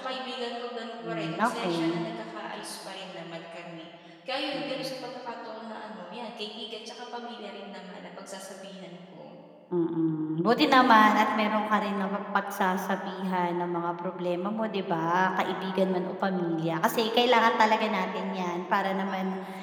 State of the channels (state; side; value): identical; both; correlation 1.00